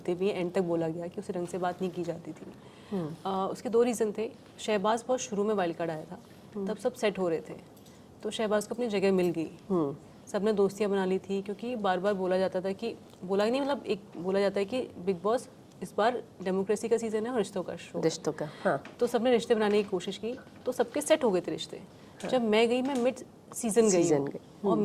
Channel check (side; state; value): both; identical; correlation 1.00